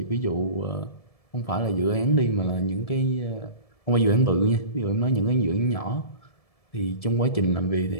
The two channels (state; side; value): late; right; 1.7 ms